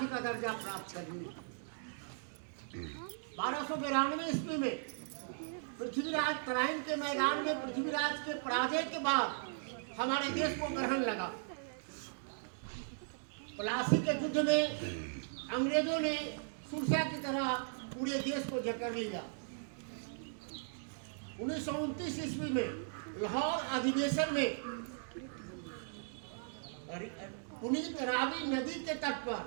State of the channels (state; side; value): silent; left; digital silence